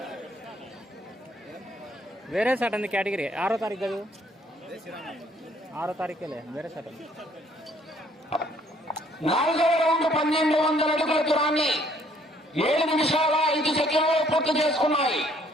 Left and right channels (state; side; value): normal; both; correlation 0.63